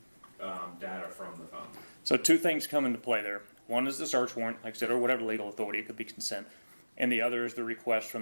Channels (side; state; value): both; inverted; correlation -1.00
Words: data from the phone? So two things come into play there. One is the search warrant, like I said, or whatever legal authority. It could be consent. And the other is the request